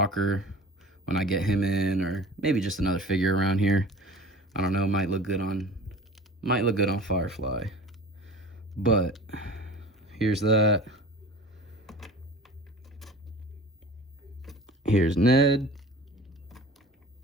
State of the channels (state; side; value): normal; both; correlation 0.40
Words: when I get him in, or maybe just another figure around here. I don't know, might look good on Firefly. But here's that. Here's Ned